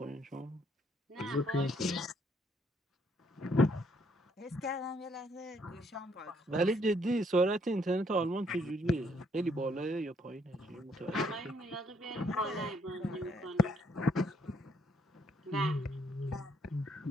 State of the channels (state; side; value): normal; both; correlation 0.69